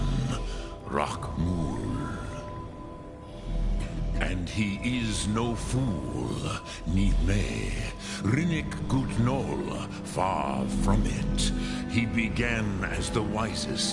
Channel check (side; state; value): both; identical; correlation 1.00